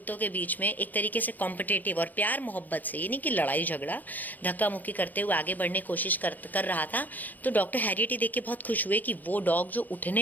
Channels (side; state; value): right; late; 0.086 ms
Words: के बीच में एक तरीके से कॉम्पिटेटिव और प्यार मोहब्बत से, ये नहीं कि लड़ाई झगड़ा, धक्का मुक्की करते हुए आगे बढ़ने की कोशिश कर रहा था, तो डॉक्टर हैरियट ही देख के बहुत खुश हुए कि वो डॉग जो